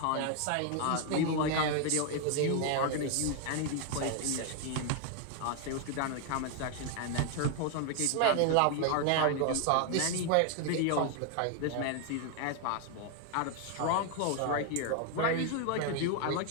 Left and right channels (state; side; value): different; both; correlation 0.00